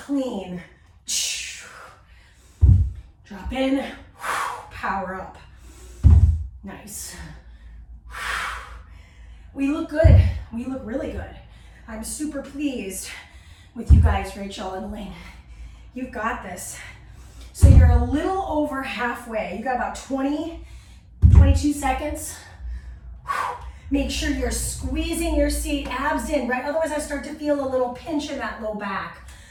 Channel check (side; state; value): both; identical; correlation 1.00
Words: Drop in, power up. Nice. We look good. We look really good. I'm super pleased with you guys, Rachel and Elaine. You've got this. So you're a little over halfway. You got about 20, 22 seconds. Make sure you're squeezing your seat, abs in, right? Otherwise I start to feel a little pinch in that low back.